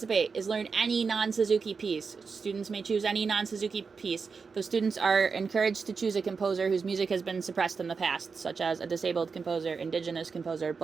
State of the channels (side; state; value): left; quieter; 5.1 dB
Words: is learn any non-Suzuki piece. Students may choose any non-Suzuki piece. Those students are encouraged to choose a composer whose music has been suppressed in the past, such as a disabled composer, indigenous composer,